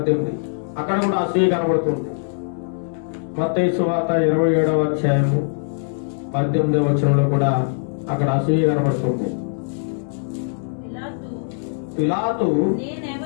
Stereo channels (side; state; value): right; silent; digital silence